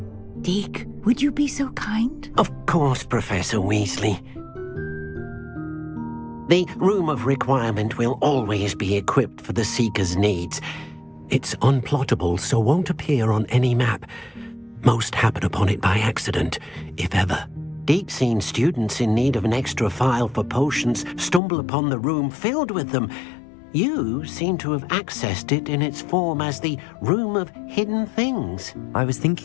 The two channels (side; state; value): right; drops out; at 21.4 s